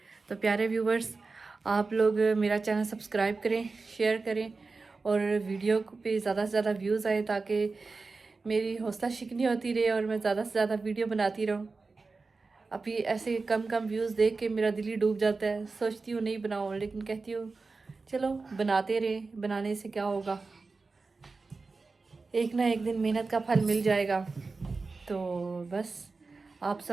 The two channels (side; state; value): left; quieter; 4.0 dB